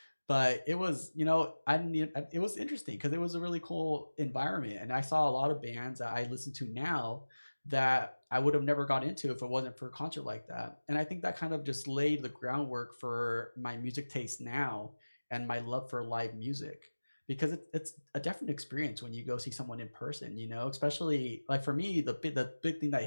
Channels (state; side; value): inverted; both; correlation -1.00